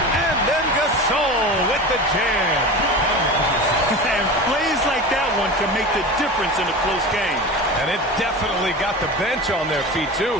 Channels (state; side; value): normal; both; correlation 0.30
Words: then Gasol with the jam. And plays like that one can make the difference in a close game. And it definitely got the bench on their feet,